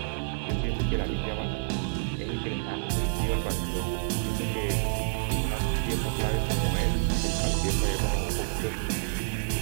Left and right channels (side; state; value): left; silent; digital silence